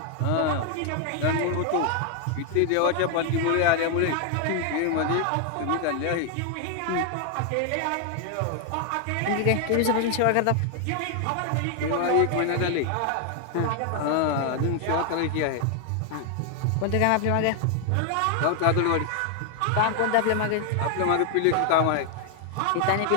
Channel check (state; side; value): different; both; correlation 0.00